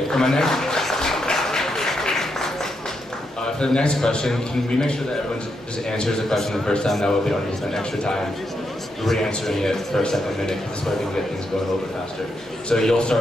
for the next question, can we make sure that everyone just answers the question the first time? That way we don't need to spend extra time re-answering it for a second minute, because this way we can get things going a little bit faster. So you'll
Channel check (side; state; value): both; normal; correlation 0.81